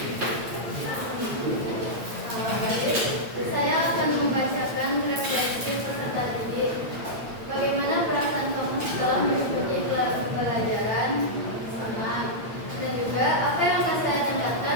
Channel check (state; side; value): late; left; 8.8 ms